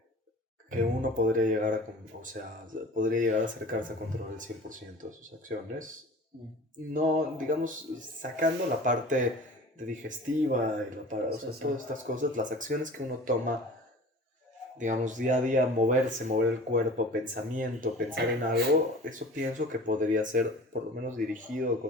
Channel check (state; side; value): normal; both; correlation 0.41